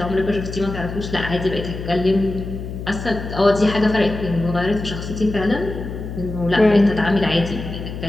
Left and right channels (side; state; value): left; noise; hum, 8 dB below the sound